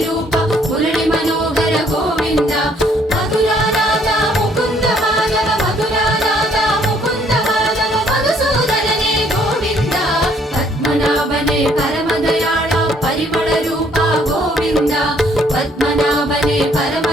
ரூபா முரளி மனோகர கோவிந்தா மதுராநாத முகுந்த மாதவ மதுராநாத முகுந்த மாதவ மதுசூதனனே கோவிந்தா பத்மநாபனே பரமதயாள பரிமள ரூபா கோவிந்தா பத்மநாபனே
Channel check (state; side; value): normal; both; correlation 0.64